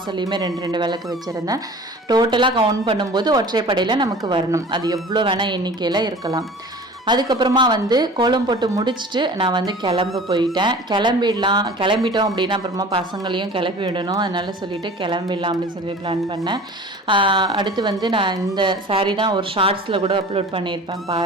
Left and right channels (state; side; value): normal; both; correlation 0.42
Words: 2 விளக்கு வச்சுருந்தேன். டோட்டலாக கவுண்ட் பண்ணும்போது ஒற்றைப்படையில் நமக்கு வரணும். அது எவ்வளோ வேணால் எண்ணிக்கையில் இருக்கலாம். அதுக்கப்புறமா கோலம் போட்டு முடிச்சுட்டு நான் கிளம்ப போயிட்டேன். கிளம்பிட்டோம் அப்படின்னா அப்புறமா பசங்களையும் கிளப்பி விடணும். அதனால சொல்லிவிட்டு கிளம்பிடலாம் அப்படின்னு சொல்லி பிளான் பண்ணேன். அடுத்து நான் இந்த சாரீ தான் ஒரு ஷார்ட்ஸில் கூட அப்லோட் பண்ணியிருப்பேன்